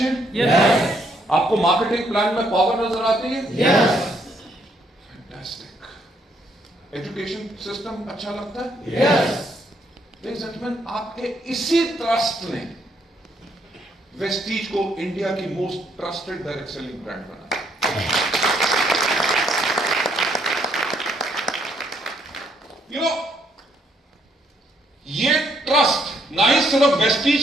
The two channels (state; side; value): normal; both; correlation 0.71